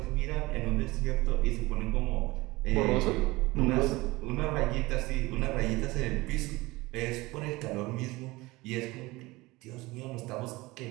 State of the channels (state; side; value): quieter; left; 21.1 dB